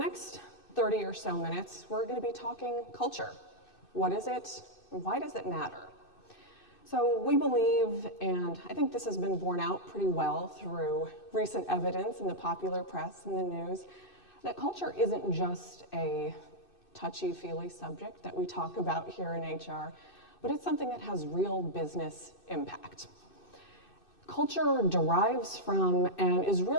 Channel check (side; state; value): right; late; 2.6 ms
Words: 30 or so minutes, we're going to be talking culture. What is it, and why does it matter? So we believe, and I think this has been borne out pretty well through recent evidence in the popular press and the news, that culture isn't just a touchy-feely subject that we talk about here in HR, but it's something that has real business impact. Culture derives from and is